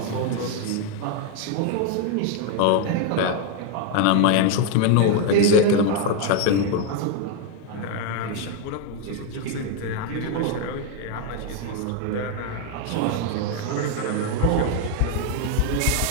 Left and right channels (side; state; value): both; different; correlation 0.01